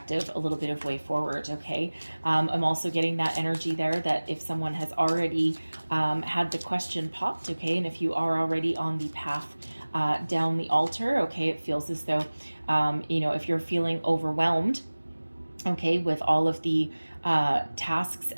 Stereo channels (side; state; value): both; inverted; correlation -1.00